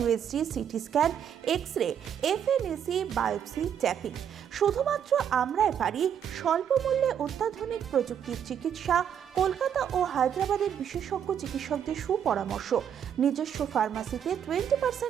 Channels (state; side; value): quieter; left; 8.7 dB